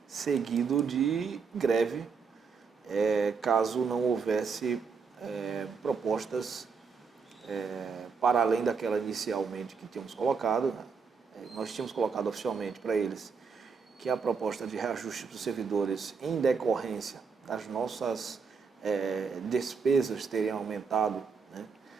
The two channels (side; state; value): left; quieter; 5.5 dB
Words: seguido de greve, caso não houvesse propostas para além daquela inicialmente que tínhamos colocado. Nós tínhamos colocado oficialmente para eles que a proposta de reajuste dos servidores em decorrência das nossas despesas teriam aumentado, né,